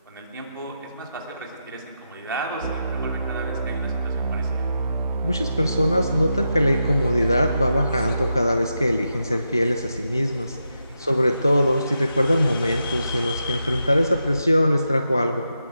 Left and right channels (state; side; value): inverted; both; correlation -0.86